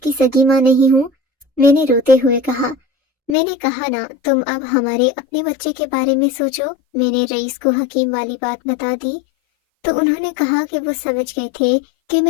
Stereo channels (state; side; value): drops out; right; at 3.4 s